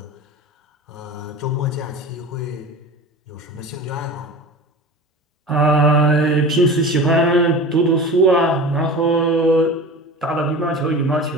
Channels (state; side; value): normal; both; correlation 0.35